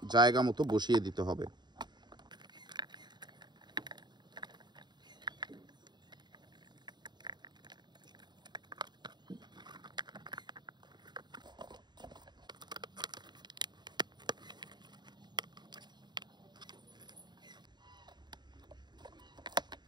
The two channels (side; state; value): left; late; 0.21 ms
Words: জায়গা মতো বসিয়ে দিতে হবে।